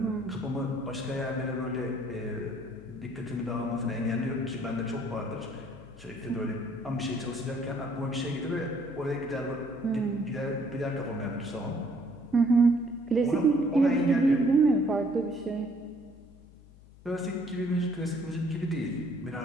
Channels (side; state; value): left; noise; hum, 22 dB below the sound